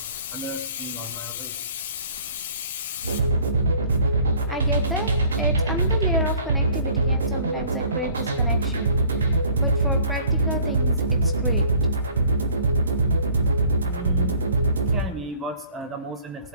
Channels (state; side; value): inverted; both; correlation -0.54